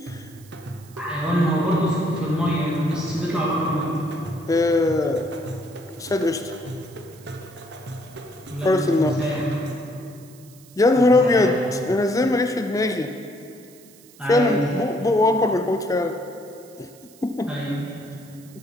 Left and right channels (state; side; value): noise; right; hiss, 25 dB below the sound